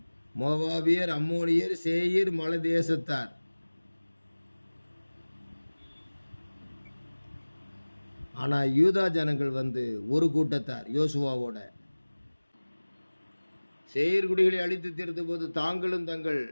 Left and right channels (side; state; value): both; inverted; correlation -1.00